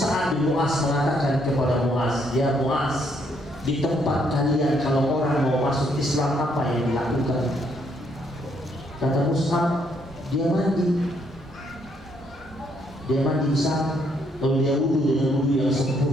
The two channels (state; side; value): normal; both; correlation 0.71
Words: bin Mu'az mengatakan kepada Mu'az, ya Mu'az, di tempat kalian kalau orang mau masuk Islam apa yang dilakukan? Kata Mus'ab, dia mandi di sana, lalu dia wudhu dengan wudhu yang